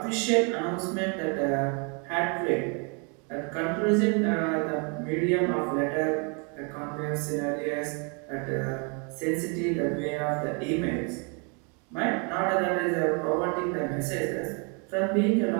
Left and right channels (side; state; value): left; quieter; 35.6 dB